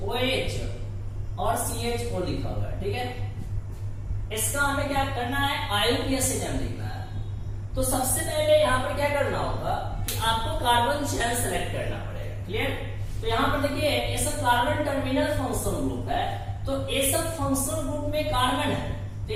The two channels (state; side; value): identical; both; correlation 1.00